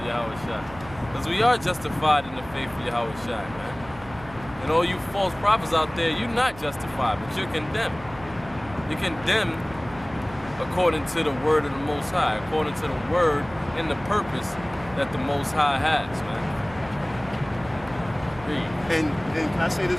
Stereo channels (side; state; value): right; noise; hum, 18 dB below the sound